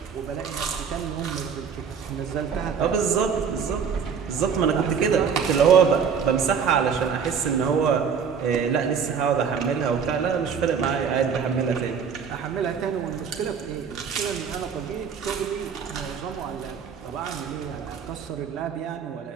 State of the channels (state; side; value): quieter; left; 6.7 dB